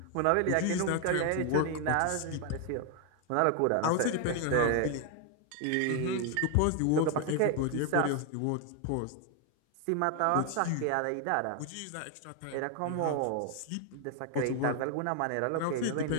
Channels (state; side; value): different; both; correlation 0.01